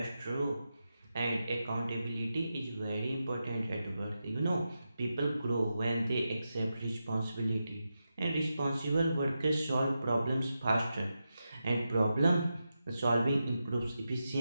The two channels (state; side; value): inverted; both; correlation -0.89